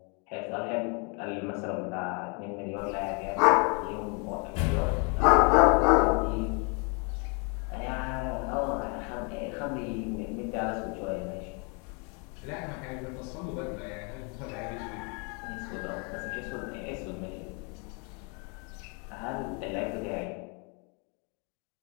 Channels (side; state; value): right; quieter; 34.7 dB